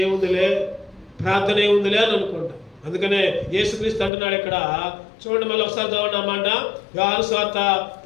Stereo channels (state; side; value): drops out; right; at 4.1 s